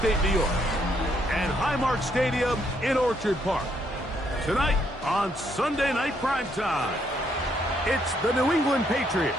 New York and Highmark Stadium in Orchard Park. Tonight on Sunday Night Primetime, it's the New England Patriots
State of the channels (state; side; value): normal; both; correlation 0.72